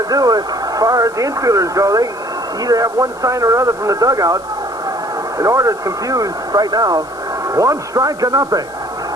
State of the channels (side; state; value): left; noise; hiss, 25 dB below the sound